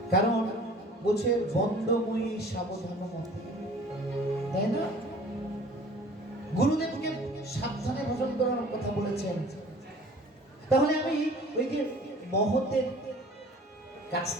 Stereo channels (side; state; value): both; normal; correlation 0.48